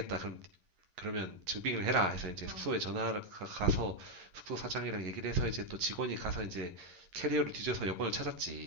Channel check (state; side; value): late; left; 11 ms